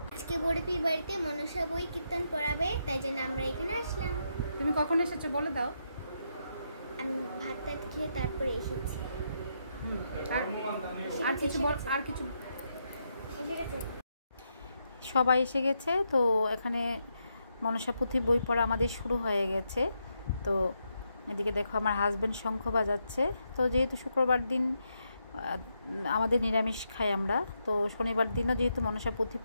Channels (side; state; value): both; inverted; correlation -0.81